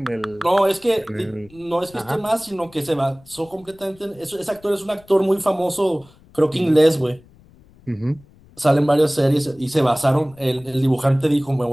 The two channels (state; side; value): noise; left; rumble, 26 dB below the sound